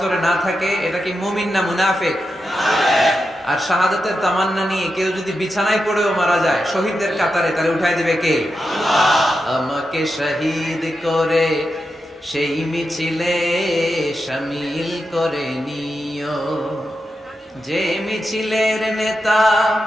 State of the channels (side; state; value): both; normal; correlation 0.88